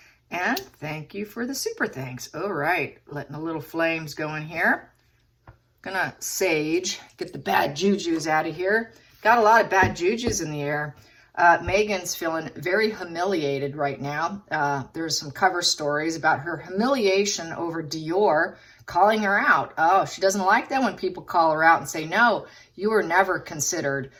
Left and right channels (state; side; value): identical; both; correlation 1.00